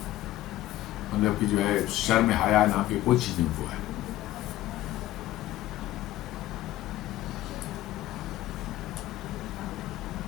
मतलब कि जो है शर्म हया नाम की कोई चीज उनको है।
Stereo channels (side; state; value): right; quieter; 15.0 dB